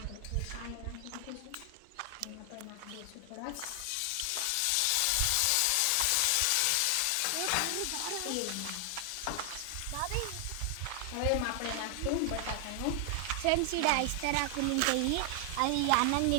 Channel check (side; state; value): both; different; correlation 0.00